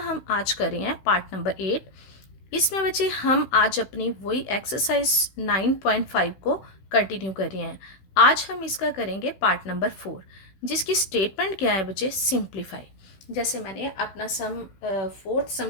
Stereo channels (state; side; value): late; right; 16 ms